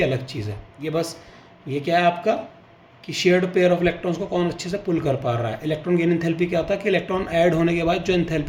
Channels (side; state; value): both; identical; correlation 1.00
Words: अलग चीज़ है। ये बस ये क्या है आपका कि शेयर्ड पेयर ऑफ इलेक्ट्रॉन्स को कौन अच्छे से पुल कर पा रहा है। इलेक्ट्रॉन गेन एंथैल्पी क्या होता है कि इलेक्ट्रॉन ऐड होने के बाद जो